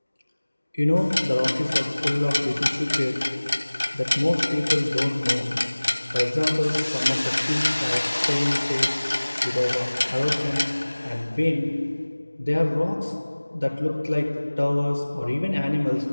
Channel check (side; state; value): both; inverted; correlation -1.00